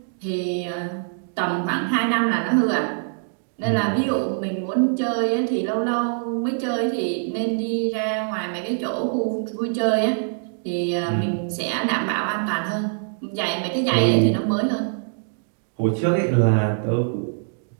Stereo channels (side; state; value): left; silent; digital silence